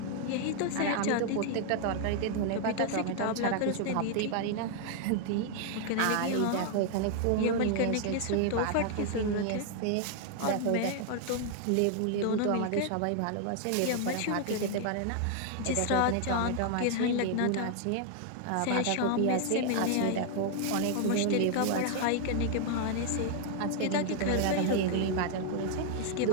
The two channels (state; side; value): different; both; correlation 0.00